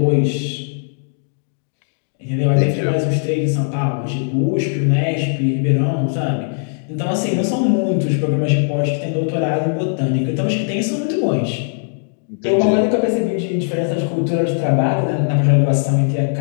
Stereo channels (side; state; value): right; silent; 67 dB below the other